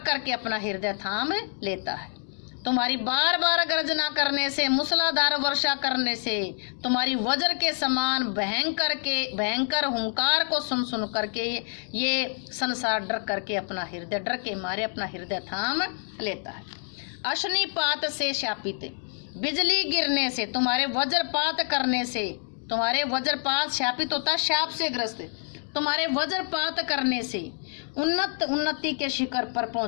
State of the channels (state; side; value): silent; right; 57 dB below the other